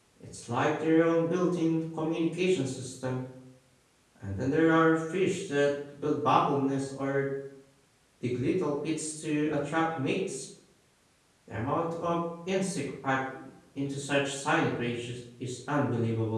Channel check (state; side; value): identical; both; correlation 1.00